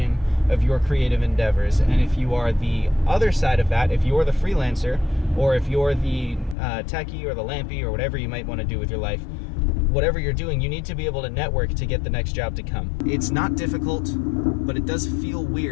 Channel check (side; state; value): right; drops out; at 6.6 s